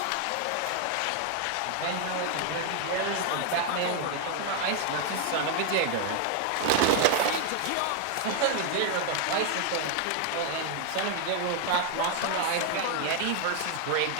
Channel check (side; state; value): both; different; correlation 0.00